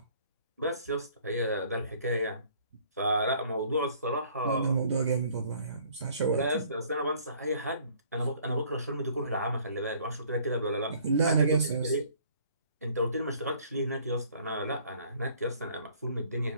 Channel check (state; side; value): inverted; both; correlation -0.57